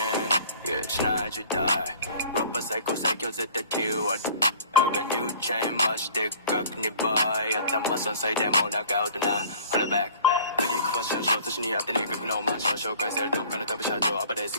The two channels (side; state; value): both; inverted; correlation -0.48